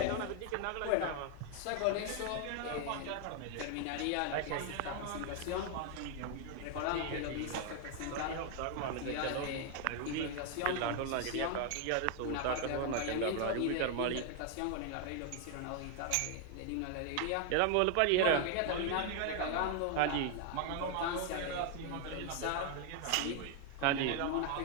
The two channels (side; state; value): both; different; correlation 0.00